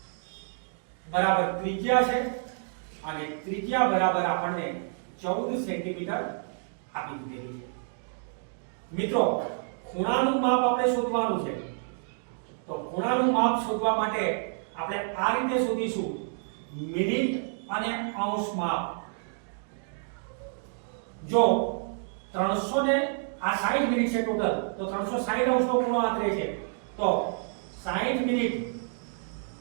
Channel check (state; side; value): silent; left; digital silence